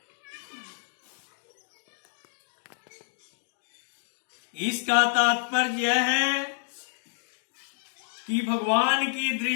इसका तात्पर्य यह है कि भगवान की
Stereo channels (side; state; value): right; silent; 59 dB below the other